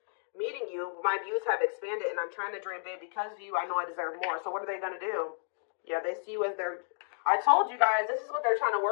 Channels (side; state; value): right; silent; digital silence